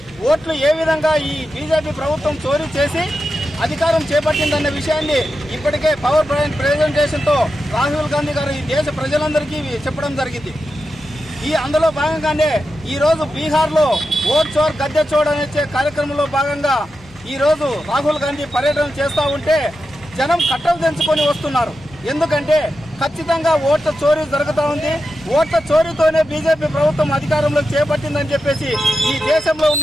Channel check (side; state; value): left; noise; hum, 26 dB below the sound